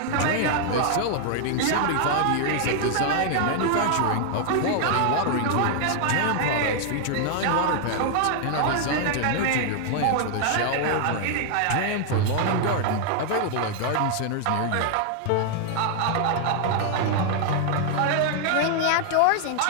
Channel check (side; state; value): both; different; correlation 0.00